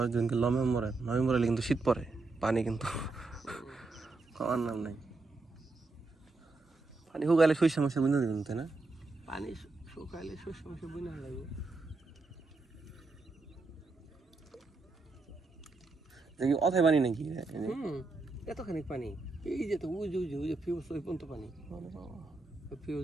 দিনকে নভেম্বরে কিন্তু শীত পড়ে পানি কিন্তু খাওয়ার নাম নাই পানি শুকাইলে শস্য মাসে বুঝে দেবেন তাই না পানি শুকাইলে শস্য মাসে বুঝে লাগবে দেখি অথায় পানি নাকি এতখানি পানি এই যে তো ওই যে ফিউজ ওই পর্যন্ত পানি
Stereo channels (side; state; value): left; quieter; 3.7 dB